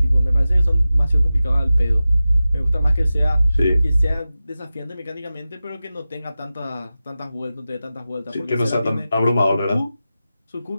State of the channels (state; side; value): inverted; both; correlation -0.94